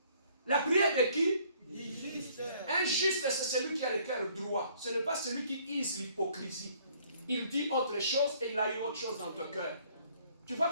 La prière de qui? Du juste. Un juste, c'est celui qui a le cœur droit. Ce n'est pas celui qui use l'hypocrisie. Il dit autre chose et il a eu autre chose dans ton cœur. Tu vois,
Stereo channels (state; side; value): inverted; both; correlation -0.61